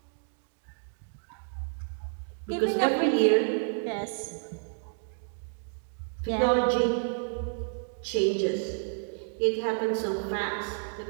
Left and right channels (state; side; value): silent; left; digital silence